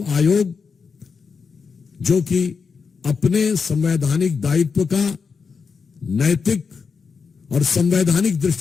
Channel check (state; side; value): quieter; right; 5.4 dB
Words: आयोग जो कि अपने संवैधानिक दायित्व का नैतिक और संवैधानिक